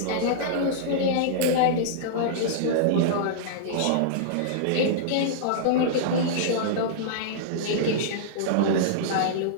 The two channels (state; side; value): different; both; correlation -0.02